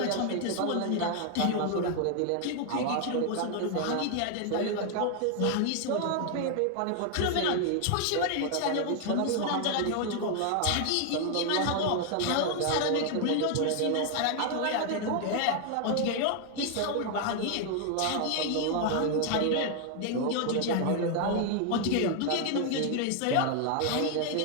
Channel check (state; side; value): different; both; correlation 0.00